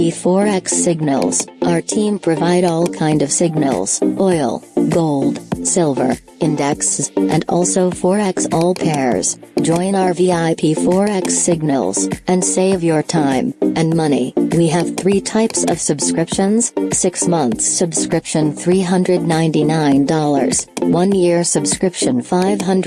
Forex signals. Our team provide all kind of signals, oil, gold, silver, indexes, and also Forex all pairs. Join our VIP Forex signals, and save your time and money. We have 3 types of subscriptions: 6 months subscription $399, 1 year subscription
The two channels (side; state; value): both; identical; correlation 1.00